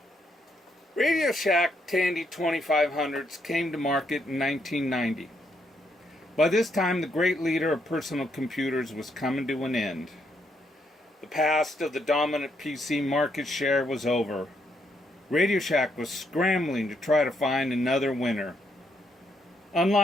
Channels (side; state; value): both; normal; correlation 0.76